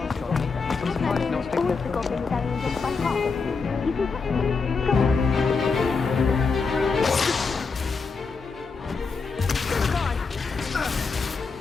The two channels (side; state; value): right; quieter; 4.7 dB